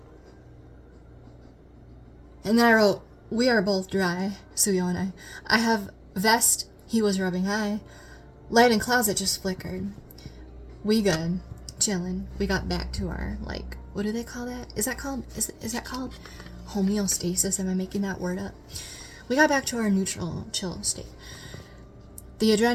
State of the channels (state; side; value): identical; both; correlation 1.00